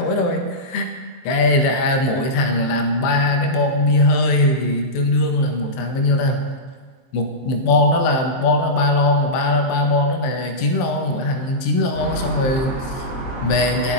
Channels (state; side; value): late; right; 23 ms